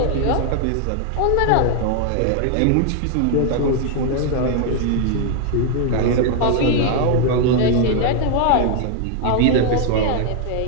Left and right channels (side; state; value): both; different; correlation 0.00